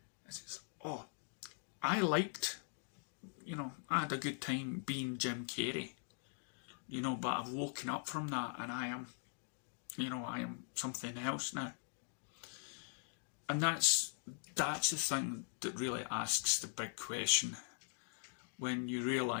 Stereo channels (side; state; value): right; silent; 50 dB below the other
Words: he says, oh, I liked, you know, I had a good time being Jim Carrey, you know, but I've woken up from that and I am, you know, I am something else now. And that's the thing that really asks the big question, when you